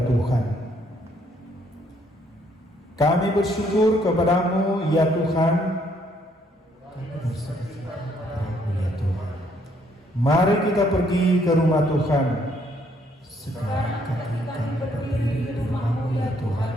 Tuhan. Kami bersyukur kepadamu ya Tuhan. Mari kita pergi ke rumah Tuhan. Sekarang kami berdiri di rumah-Mu ya Tuhan,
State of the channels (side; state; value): both; normal; correlation 0.68